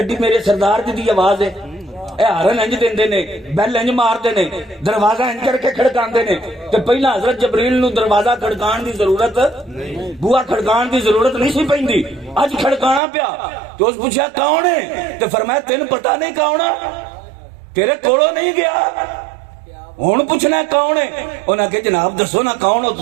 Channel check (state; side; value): drops out; left; at 13.0 s